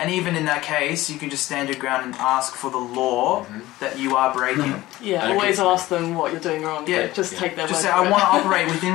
even in that case, you can just stand your ground and ask for the law that you are breaking. Yeah, always ask them what you're doing wrong. Yeah, Just take their word. Just say, I want to operate within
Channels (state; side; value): quieter; right; 17.3 dB